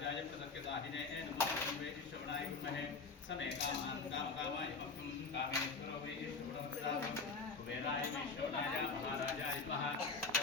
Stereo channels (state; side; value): quieter; right; 4.3 dB